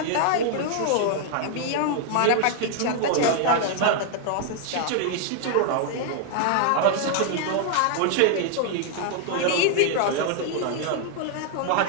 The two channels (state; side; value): different; both; correlation 0.00